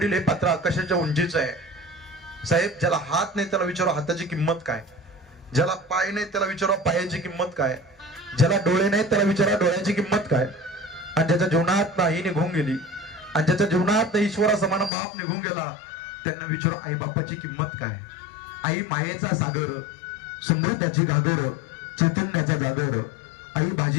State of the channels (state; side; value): drops out; right; at 14.9 s